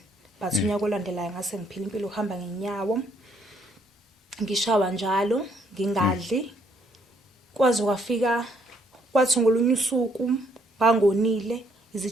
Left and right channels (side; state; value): both; normal; correlation 0.69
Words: But unyaka olandelayo ngase ngiphila impilo uhamba ngenyawo. Ngishawa njalo ngingadli. Kwaze kwafika kwathi ngolunye usuku bangonile